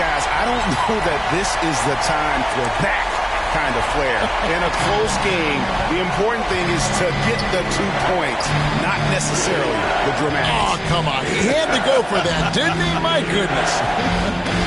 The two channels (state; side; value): identical; both; correlation 1.00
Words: guys, I don't know that this is the time for that kind of flair. In a close game, the important thing is to get the 2 points, not necessarily the dramatics. Oh, come on. He had to go for that, didn't he? My goodness.